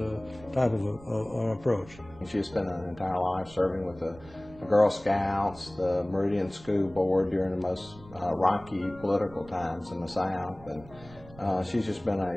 type of an approach. She spent an entire life serving with the Girl Scouts, the Meridian School Board during the most rocky political times in the South, and she's just been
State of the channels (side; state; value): right; noise; rumble, 21 dB below the sound